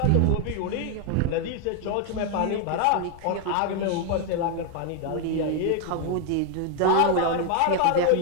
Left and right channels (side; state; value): both; different; correlation 0.01